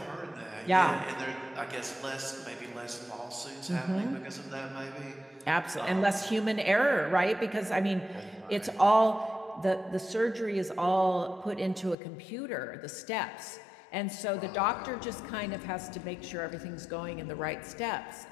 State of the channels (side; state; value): right; drops out; at 12.0 s